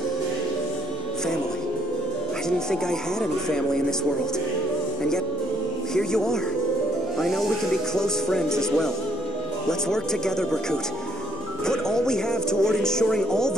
Family. I didn't think I had any family in this world. And yet, here you are. I know we can be close friends as well. Let's work together, Berkut. Put all we have toward ensuring all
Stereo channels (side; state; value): both; normal; correlation 0.66